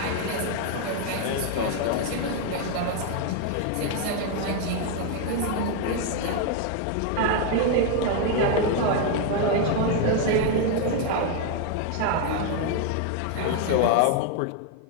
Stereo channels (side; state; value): both; different; correlation 0.00